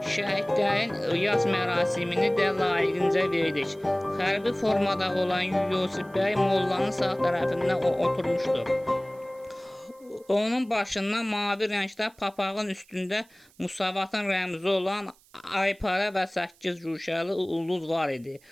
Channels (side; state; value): right; noise; hiss, 30 dB below the sound